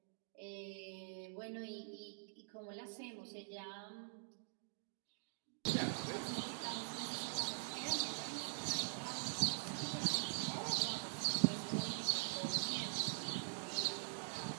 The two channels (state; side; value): silent; left; digital silence